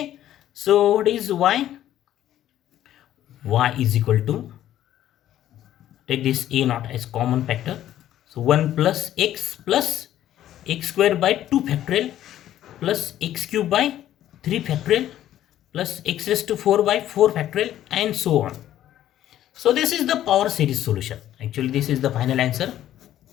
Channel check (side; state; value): right; quieter; 12.3 dB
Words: So what is y? Y is equal to, take this a naught as common factor, so 1 plus x square by 2 factorial plus x cube by 3 factorial plus x raised to 4 by 4 factorial and so on. So this is the power series solution. Actually this is the final answer.